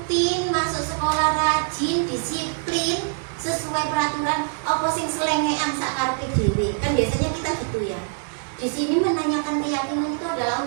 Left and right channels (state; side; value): silent; left; digital silence